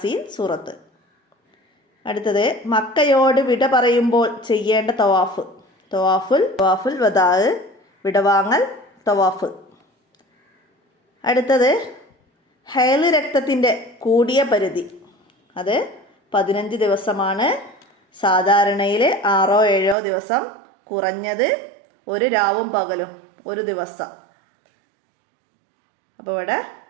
സൂറത്ത്. അടുത്തത്, മക്കയോട് വിട പറയുമ്പോൾ ചെയ്യേണ്ട തവാഫുൽ വദാ, വിടവാങ്ങൽ തവാഫ്. അടുത്തത്, ഹൈല് രക്തത്തിൻ്റെ കൂടിയ പരിധി, അത് 15 ദിവസമാണ്. സാധാരണയിൽ 6-7 ദിവസം, കുറഞ്ഞത് ഒരു രാവും പകലും 1 ദിവസം. അപ്പോൾ ഇവിടെ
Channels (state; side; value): drops out; left; at 20.0 s